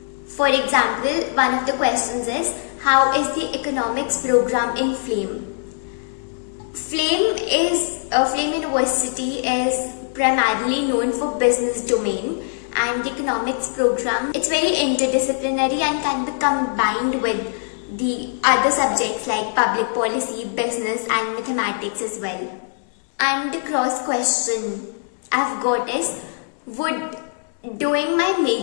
For example, one of the questions is, how is the economics program in FLAME? FLAME University is primarily known for business domain, and the economics program, it's very interdisciplinary and can be combined with the other subjects like public policy, business and mathematics as well. And the cross question I've got is, would doing my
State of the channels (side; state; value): right; silent; 63 dB below the other